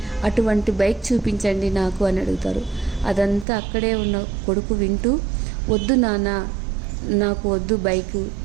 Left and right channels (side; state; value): left; drops out; at 3.5 s